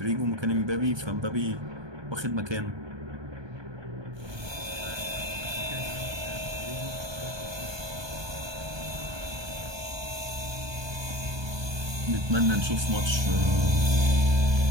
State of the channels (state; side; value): late; left; 1.2 ms